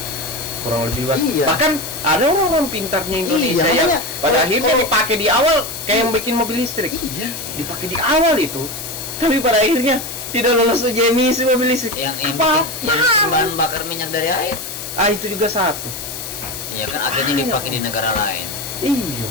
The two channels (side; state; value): left; noise; hiss, 8 dB below the sound